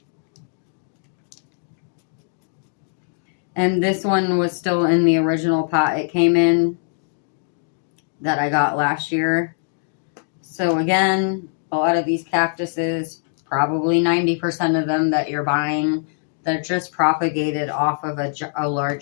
And this one was still in the original pot it came in that I got last year. So again, a lot of these cactuses, probably 90% of them that you're buying, they're just propagated off of a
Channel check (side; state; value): right; silent; digital silence